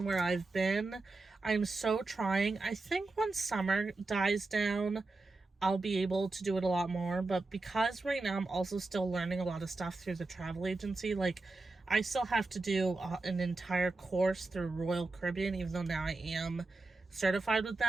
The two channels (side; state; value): left; quieter; 3.4 dB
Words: where I've been. I'm so trying. I think when summer dies down, I'll be able to do it a lot more. But because right now I'm also still learning a lot of stuff through the travel agency, I still have to do an entire course through Royal Caribbean, even though now I am certified with